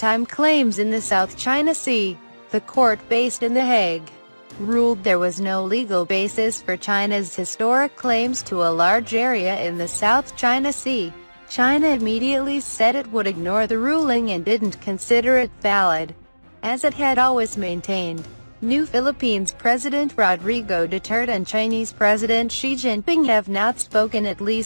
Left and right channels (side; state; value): both; inverted; correlation -1.00